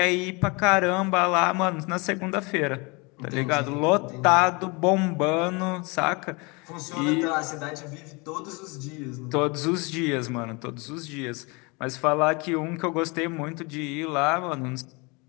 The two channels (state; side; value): quieter; right; 28.3 dB